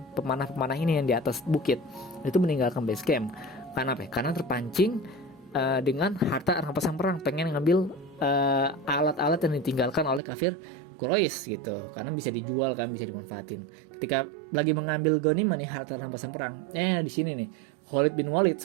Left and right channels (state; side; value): drops out; left; at 10.2 s